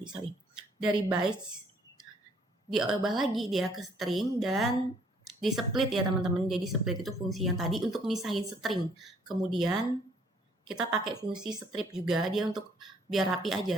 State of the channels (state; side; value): normal; both; correlation 0.63